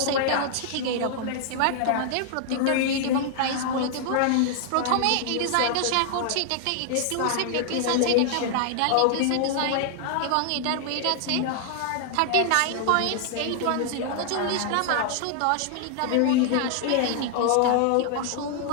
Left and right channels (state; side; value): different; both; correlation 0.00